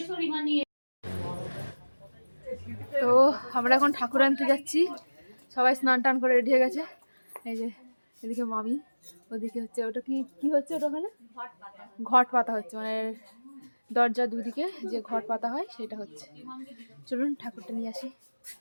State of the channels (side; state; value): both; inverted; correlation -1.00